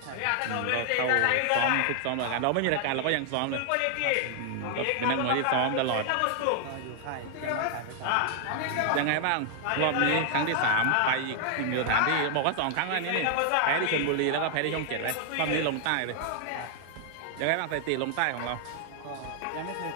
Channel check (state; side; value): different; both; correlation 0.00